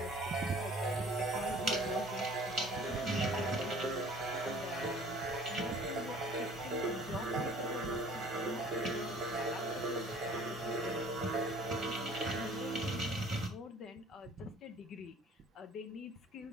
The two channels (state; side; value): normal; both; correlation 0.51